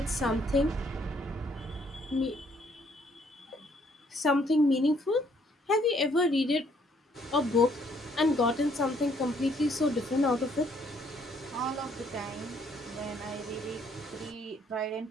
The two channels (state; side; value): normal; both; correlation 0.67